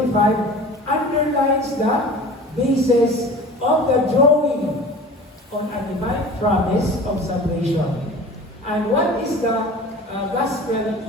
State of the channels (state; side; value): normal; both; correlation 0.40